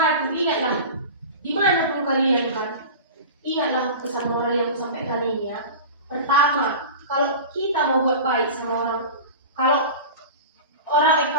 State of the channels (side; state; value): both; inverted; correlation -0.32